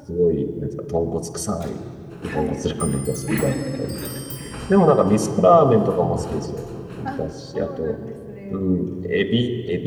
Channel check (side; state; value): both; identical; correlation 1.00